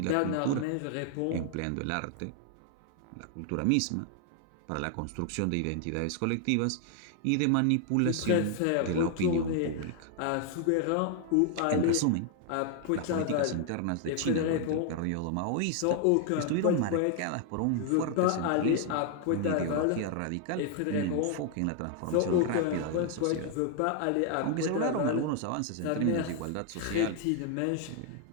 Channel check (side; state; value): both; different; correlation 0.00